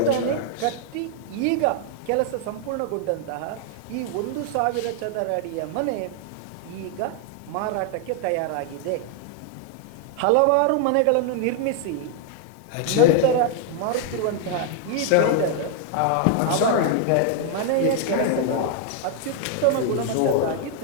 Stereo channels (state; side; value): different; both; correlation 0.00